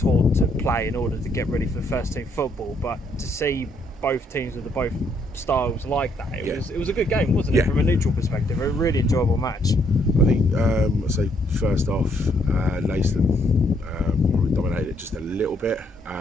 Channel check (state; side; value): normal; both; correlation 0.71